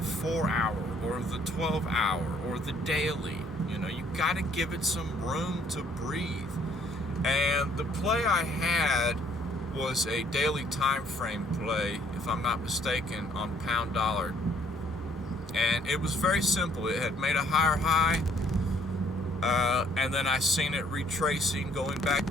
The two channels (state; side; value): normal; both; correlation 0.63